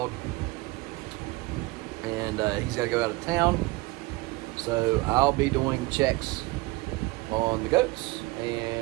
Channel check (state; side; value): quieter; left; 22.3 dB